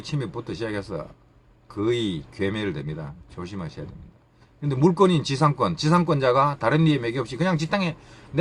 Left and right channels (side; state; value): both; identical; correlation 1.00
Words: 침입부터 시작해서 거의 괴멸 됩니다. 조심하셔야 됩니다. 근데 물건인 지상권자가 다른 이의 매개 없이 그냥 지 땅에